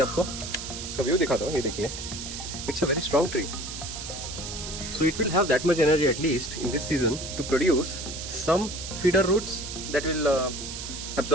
आपको इसका व्यू दिखाता हूँ. ये देखिए, it's a very strong tree. So it will have that much energy at least in this season to produce some feeder roots that will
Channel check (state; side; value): noise; right; hiss, 8 dB below the sound